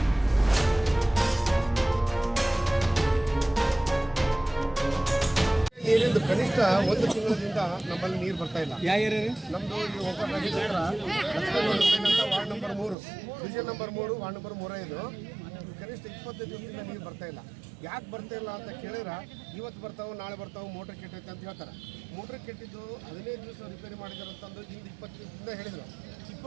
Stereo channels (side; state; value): left; drops out; at 13.0 s